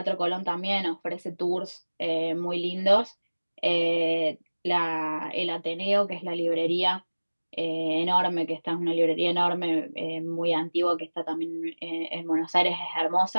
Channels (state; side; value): inverted; both; correlation -1.00